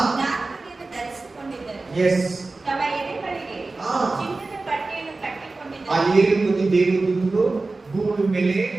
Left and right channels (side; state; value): left; quieter; 3.5 dB